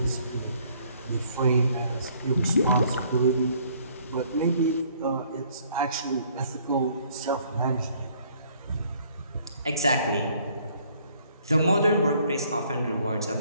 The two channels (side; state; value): both; inverted; correlation -0.62